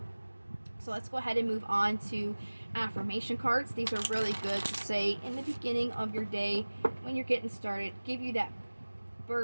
So let's go ahead and move on to affirmation cards. These are really good to say in the beginning of your day when you're getting started, give you that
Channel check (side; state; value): both; inverted; correlation -1.00